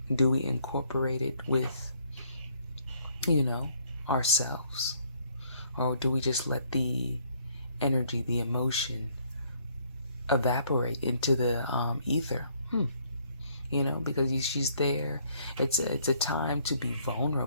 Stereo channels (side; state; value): both; inverted; correlation -0.66